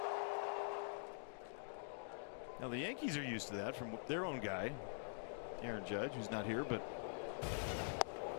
Now the Yankees are used to that from their own guy, Aaron Judge, who's not here, but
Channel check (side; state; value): right; silent; digital silence